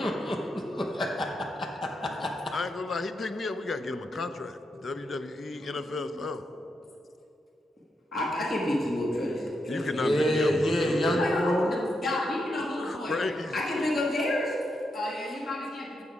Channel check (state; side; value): normal; both; correlation 0.83